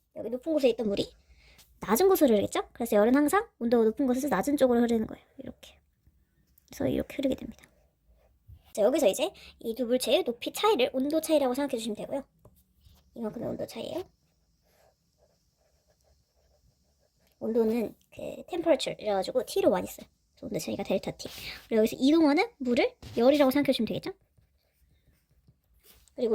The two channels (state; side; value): identical; both; correlation 1.00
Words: 여기 높은 곳에 있던 물이 낮은 곳으로 흐르겠죠. 그래서 열은 항상 온도가 높은 곳에서 낮은 쪽으로 흐르는 거예요. 이렇게. 그래서 이렇게 흐르게 됩니다. 자, 여기서 이제 이 두 물체의 높이 차이를 온도 차이라고 생각해 주시면 되고요. 이만큼의 온도 차이예요. 온도는 temperature 이래가지고 T로 많이 써요. 온도 차이가 델타 T. 그리고 여기서 이동하는 물을 열이라고 생각해 주시면 되겠죠?